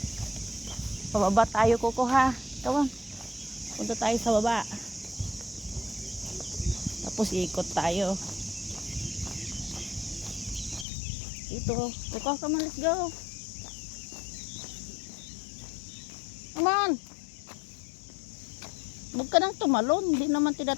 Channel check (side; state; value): right; drops out; at 10.9 s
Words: Pababa tayo, Coco, ha. Come on. Punta tayo sa baba. Tapos ikot tayo. Dito. Coco, come on, let's go. Come on. Huwag ka nang tumalon. Hindi naman